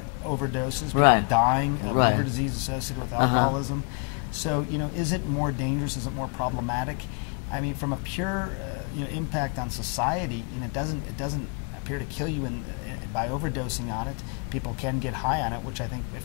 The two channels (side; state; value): right; quieter; 36.7 dB